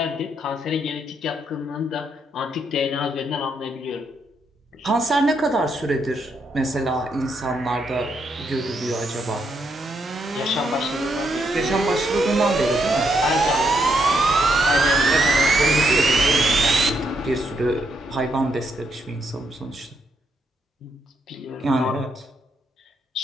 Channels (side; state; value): both; normal; correlation 0.77